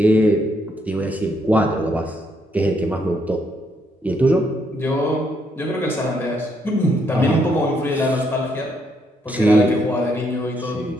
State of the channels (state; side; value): normal; both; correlation 0.74